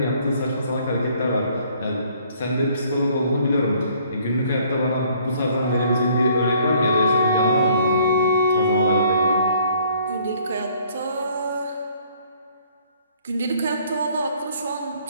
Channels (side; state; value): both; inverted; correlation -0.60